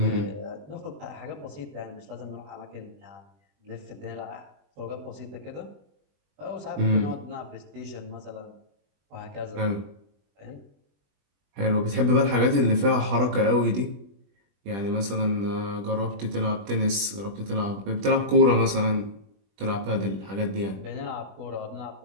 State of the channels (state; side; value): late; left; 20 ms